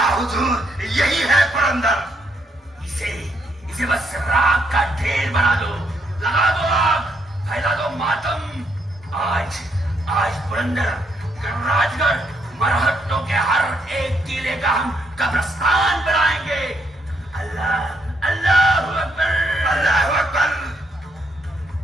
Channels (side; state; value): both; normal; correlation 0.75